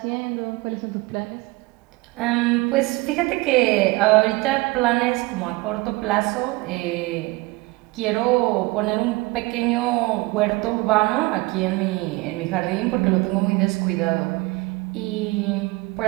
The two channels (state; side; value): quieter; left; 22.6 dB